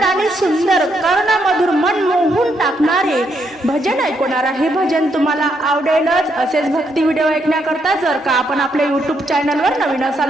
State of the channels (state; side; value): normal; both; correlation 0.76